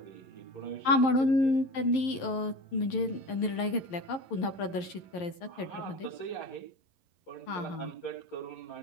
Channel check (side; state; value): right; late; 11 ms